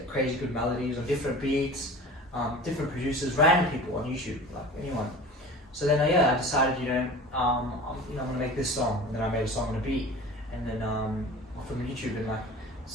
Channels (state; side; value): normal; both; correlation 0.38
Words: crazy good melodies on different beats, different producers, random people on YouTube, like anyone. So then, I decided, I'm gonna make this song, and then I made a song on a beat, and then from YouTube, and like